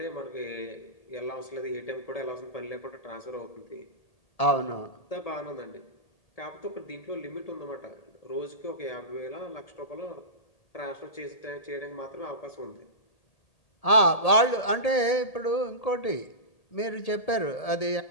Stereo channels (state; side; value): late; right; 1.8 ms